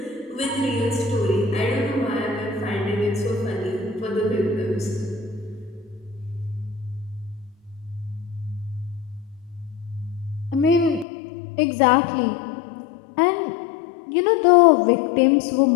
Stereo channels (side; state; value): right; drops out; at 11.1 s